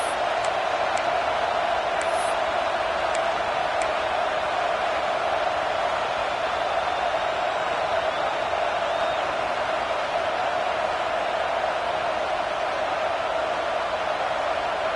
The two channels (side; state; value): both; identical; correlation 1.00